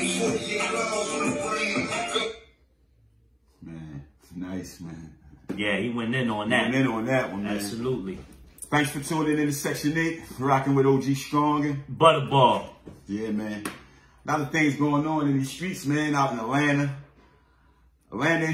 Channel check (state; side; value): identical; both; correlation 1.00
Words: 48 laws on the brain. Man, it's nice, man. Yeah, he went in on that. Went in on that one, man. Absolutely. Thanks for tuning in to Section 8. Rocking with OG Strong and Butterball. Yeah, man. A lot of things going on in these streets, man, out in Atlanta. Atlanta and